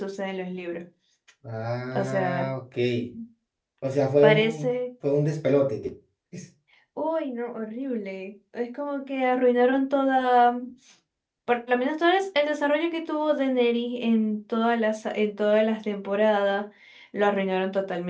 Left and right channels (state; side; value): identical; both; correlation 1.00